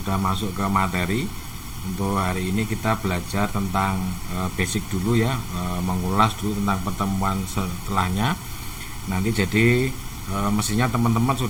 masuk ke materi. Untuk hari ini kita belajar tentang basic dulu ya, mengulas dulu tentang pertemuan setelahnya. Nanti jadi mestinya teman-teman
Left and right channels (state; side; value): identical; both; correlation 1.00